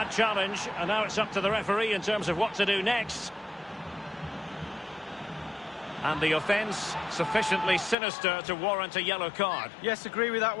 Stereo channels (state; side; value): drops out; right; at 8.0 s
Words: challenge, and now it's up to the referee in terms of what to do next. And the offence sufficiently sinister to warrant a yellow card. Yes, agree with that